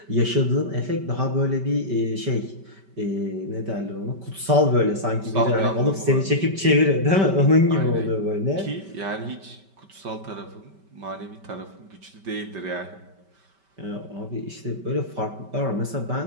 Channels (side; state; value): left; late; 5.2 ms